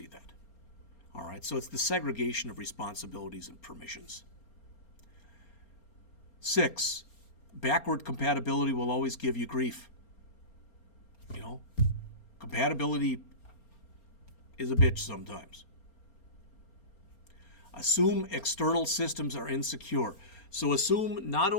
that. All right, so it's the segregation of responsibilities and permissions. 6, backward compatibility will always give you grief. Compatibility is a bitch sometimes. Assume external systems are insecure. So assume not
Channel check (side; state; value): right; late; 4.3 ms